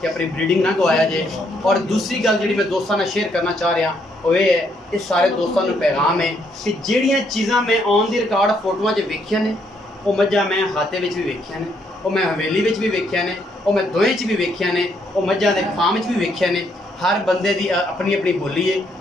कि अपनी ब्रीडिंग ना गवाया जे। और दूसरी गल जिहड़ी मैं दोस्तां नाल शेयर करना चाह रहा वो ये है ये सारे दोस्तों नूं पैगाम है कि जिहड़ियां चीज़ां मैं ऑन दी रिकॉर्ड फोटोआं 'च वेखियां ने वो मझां मैं हाते विच भी वेखियां ने वो मैं हवेली विच भी वेखियां ने वो मैं दोएं च भी वेखियां ने वो मझां दे फार्म च भी वेखियां ने। हर बंदे दी अपनी अपनी बोली है।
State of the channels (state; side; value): normal; both; correlation 0.72